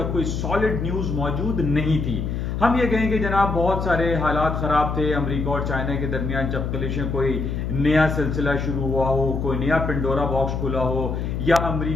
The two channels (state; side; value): noise; left; hum, 3 dB below the sound